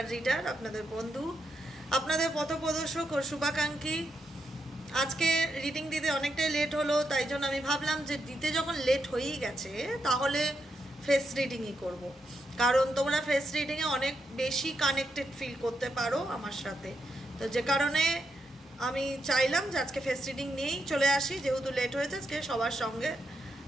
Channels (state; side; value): normal; both; correlation 0.82